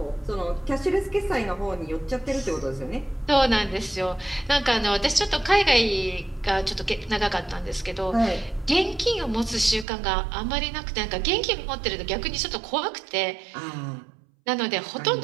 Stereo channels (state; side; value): drops out; left; at 9.9 s